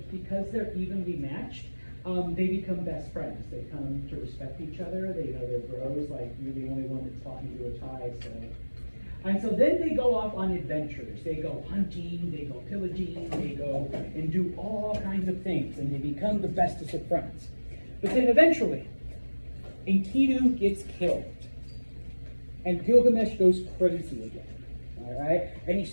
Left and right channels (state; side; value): inverted; both; correlation -1.00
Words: because they're evenly matched, they become best friends. They come to respect each other. They know they're bros, like you're the only one that's talking to a tie. And so then they go off on adventures. They go hunting, they go pillaging, they go and do all kinds of things, and they become the bestest of friends. But then eventually, Enkidu gets killed, and Gilgamesh goes crazy again. All right, and he